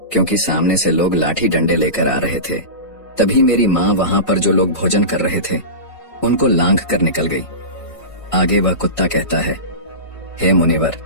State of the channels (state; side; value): late; right; 1.5 ms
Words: क्योंकि सामने से लोग लाठी डंडे लेकर आ रहे थे। तभी मेरी माँ वहां पर जो लोग भोजन कर रहे थे उनको लांघ कर निकल गई। आगे वह कुत्ता कहता है, हे मुनिवर,